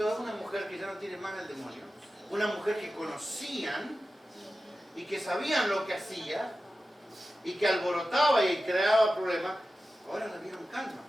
a una mujer que ya no tiene más el demonio. Una mujer que conocían y que sabían lo que hacía y que alborotaba y creaba problemas. Ahora la vieron calma,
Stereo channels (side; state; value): both; normal; correlation 0.94